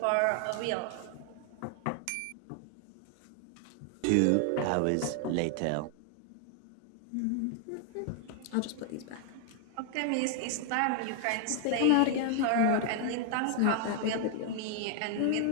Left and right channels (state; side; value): different; both; correlation 0.00